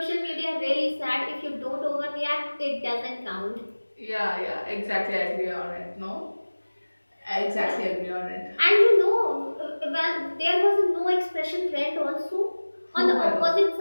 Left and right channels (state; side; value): inverted; both; correlation -1.00